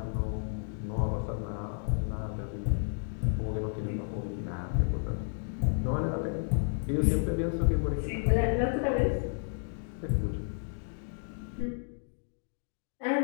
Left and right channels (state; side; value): silent; right; 55 dB below the other